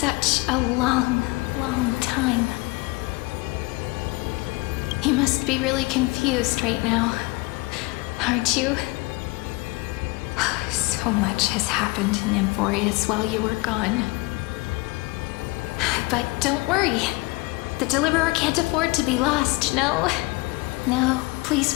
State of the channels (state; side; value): quieter; right; 24.9 dB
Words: a long, long time. You must be really confused right now, aren't you? So much has happened in Emphorius while you were gone. But don't worry. The Deliverer can't afford to be lost, no? No, please